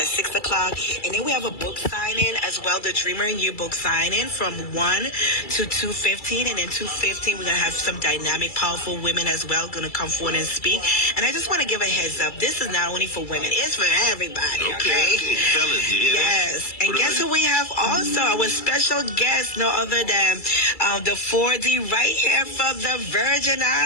6 o'clock. And then we have a book signing as well, the Dreamer in You book signing from 1 to 2:15. And then 2:15, we're going to have some dynamic, powerful women as well going to come forward and speak. And I just want to give a heads up. This is not only for women. It's for everybody. Okay. Fellas, you hear yes. That? And guess who we have also? Our special guest, no other than the 4D right here from the Virgin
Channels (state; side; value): late; right; 2.3 ms